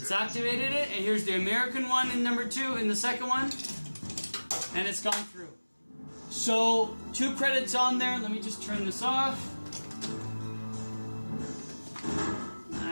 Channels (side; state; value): both; inverted; correlation -1.00